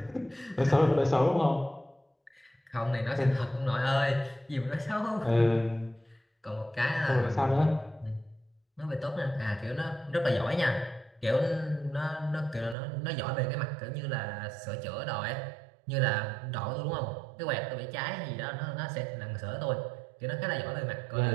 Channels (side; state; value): left; drops out; at 12.8 s